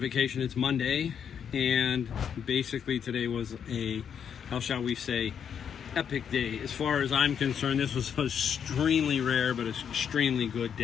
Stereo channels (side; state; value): right; quieter; 7.9 dB